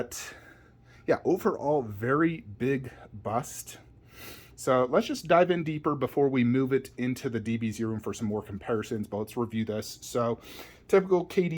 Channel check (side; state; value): both; identical; correlation 1.00